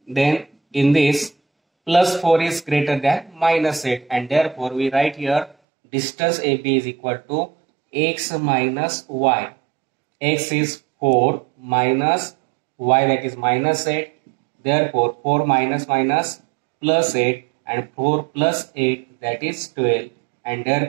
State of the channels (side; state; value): left; drops out; at 5.6 s